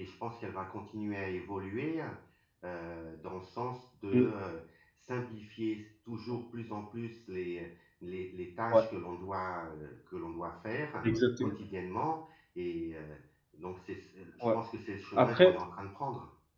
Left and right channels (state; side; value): identical; both; correlation 1.00